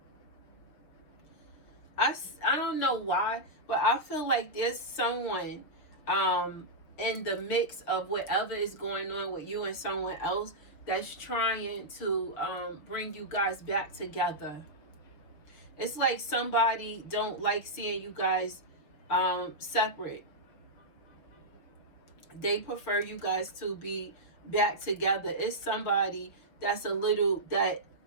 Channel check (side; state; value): right; late; 6.6 ms